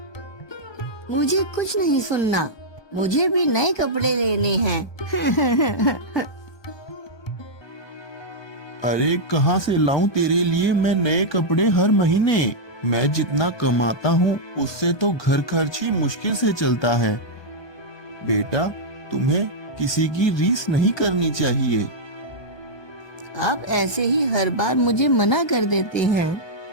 मुझे कुछ नहीं सुनना, मुझे भी नए कपड़े लेने हैं। अरे कहाँ से लाऊं तेरे लिए मैं नए कपड़े हर महीने? मैं जितना कमाता हूँ उससे तो घर खर्च ही मुश्किल से चलता है। बेटा तुम्हें किसी की रीस नहीं करनी चाहिए। आप ऐसे ही हर बार मुझे मना कर देते हैं।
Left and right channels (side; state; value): right; late; 1.2 ms